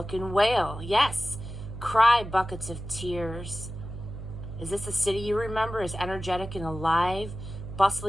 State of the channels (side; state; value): right; noise; hum, 10 dB below the sound